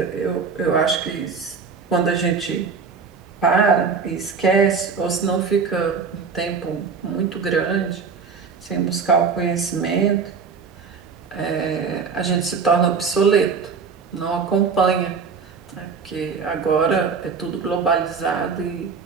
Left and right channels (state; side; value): quieter; left; 5.5 dB